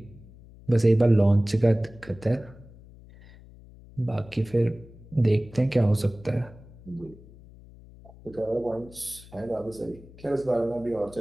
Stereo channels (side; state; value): left; noise; hum, 21 dB below the sound